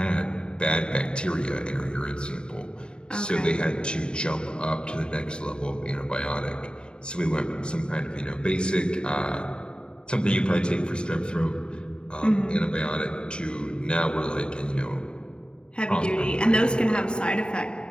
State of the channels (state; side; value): late; right; 0.050 ms